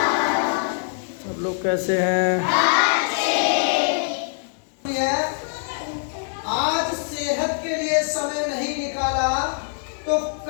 सब लोग कैसे हैं? आज सेहत के लिए समय नहीं निकाला तो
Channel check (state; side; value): silent; right; 63 dB below the other